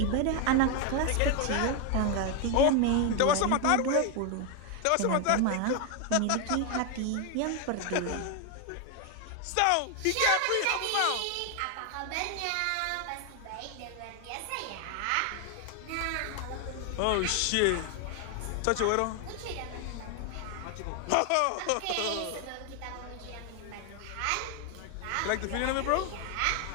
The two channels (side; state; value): both; different; correlation 0.01